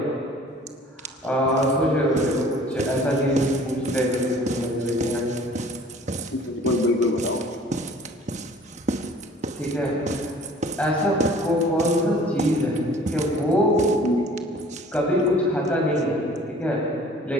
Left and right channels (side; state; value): both; normal; correlation 0.50